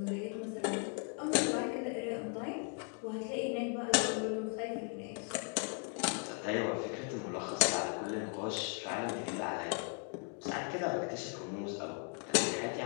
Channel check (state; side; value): quieter; right; 39.3 dB